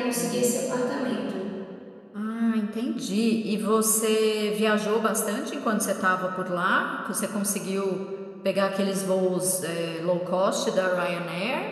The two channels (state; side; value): identical; both; correlation 1.00